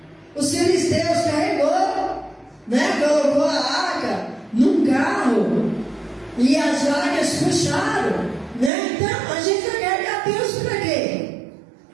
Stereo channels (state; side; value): drops out; left; at 8.7 s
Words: Os filisteus carregou, né? Colocou a arca num carro e as vacas puxaram, né? Então a gente vai carregar peso para quê?